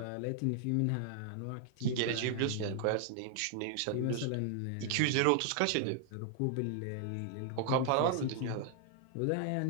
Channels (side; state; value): both; different; correlation 0.00